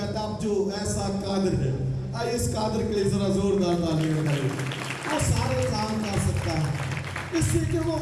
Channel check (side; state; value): both; identical; correlation 1.00